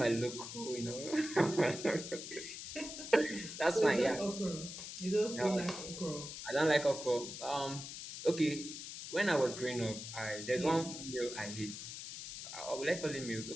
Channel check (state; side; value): noise; left; hiss, 9 dB below the sound